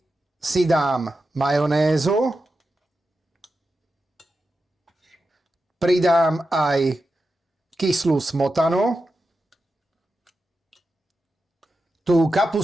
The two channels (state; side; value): normal; both; correlation 0.90